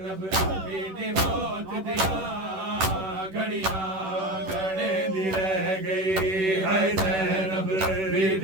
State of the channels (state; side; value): late; left; 10 ms